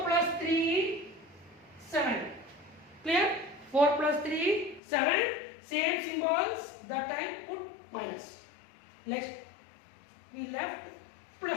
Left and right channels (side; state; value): right; drops out; at 4.8 s